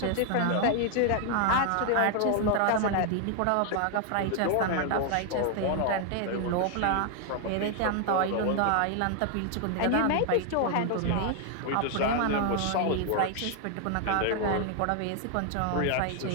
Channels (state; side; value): different; both; correlation 0.00